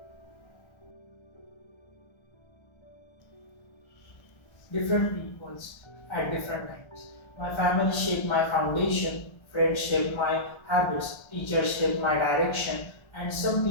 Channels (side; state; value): right; late; 1.3 ms